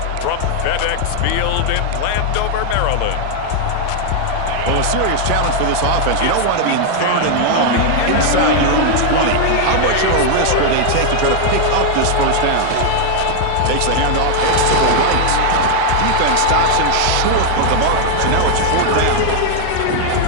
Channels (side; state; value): both; different; correlation 0.00